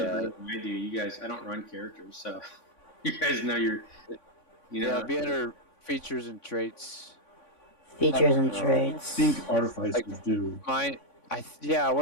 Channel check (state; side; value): late; right; 3.5 ms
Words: Yeah. better than I do. You guys, I don't run characters, so you guys know you know. Yeah, be under features and traits. Features and I traits. think artificers do. I